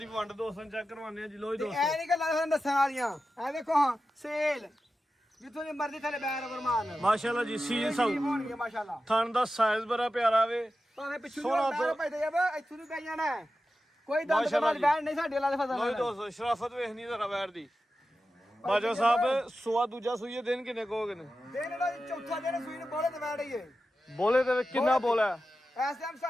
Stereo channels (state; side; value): normal; both; correlation 0.92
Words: ਵੰਡ ਦੋਸਤਾਂ ਚੈੱਕ ਕਰਵਾਉਂਦੇ ਆ ਜੀ ਲੋ ਜੀ ਦੋਸਤੋ ਐ ਨਹੀਂ ਗੱਲਾਂ ਤੁਹਾਨੂੰ ਦੱਸਣ ਵਾਲੀਆਂ ਐ ਦੇਖੋ ਹਾਂ ਸੇਲ ਜਿੱਥੋਂ ਦੀ ਮਰਜ਼ੀ ਥੱਲੇ ਬੈਰ ਗੁਰਮਾਨ ਮਾਸ਼ਾਅੱਲਾ ਜੀ ਸੀਲ ਸਾਊ ਹੋਣਗੇ ਮਾਸ਼ਾਅੱਲਾ ਥਣ ਦਾ ਸਾਈਜ਼ ਬੜਾ ਪਿਆਰਾ ਵੇ ਭਾਵੇਂ ਪਿੱਛੋਂ ਸੋਹਣਾ ਬੈਰ ਭਾਈ ਤੈਯਬ ਇੱਥੋਂ ਦੀ ਪੈ ਜਾਣਾ ਕੋਈ ਦੰਦ ਦੇ ਬਾਅਦ ਬੈਰ ਨਹੀਂ ਸਾਡੇ ਵਾਲਾ ਦੇ ਫਜ਼ਲ ਲੋ ਜੀ ਦੋਸਤੋ ਸ਼ਰਾਫਤ ਵੇਖਣੀ ਜ਼ਰਾ ਵੈਰ ਦੀ ਬਾਜਵਾ ਸਾਹਿਬ ਸੂਆ ਦੂਜਾ ਸੂਈ ਹੈ ਦਿਨ ਕਿੰਨੇ ਕੋਗੇ ਨੇ ਦਿਨ ਇਹਦਾ ਚੌਥਾ ਦਿਨ ਸੂਈ ਨੂੰ ਬੋਲੇ ਤੇ ਵੈੜ ਹੀ ਹੈ ਬੋਲੇ ਤੇ ਕਿੰਨਾ ਬੋਲਾ ਇਸ ਟਾਈਮ